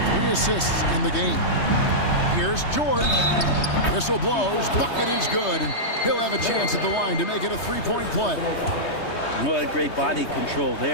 3 assists in the game. Here's George. Whistle blows. Bucket is good, and he'll have a chance at the line to make it a 3-point play. Well, great body control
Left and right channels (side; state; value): right; late; 3.2 ms